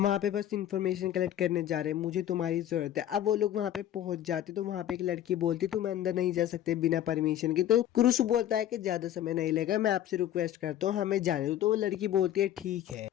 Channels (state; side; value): quieter; right; 11.6 dB